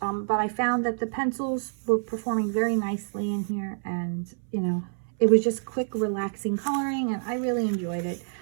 But I found that the pencils were performing very nicely in here, and you know, it was just quick, relaxing coloring, and I really enjoyed it.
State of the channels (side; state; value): left; silent; 60 dB below the other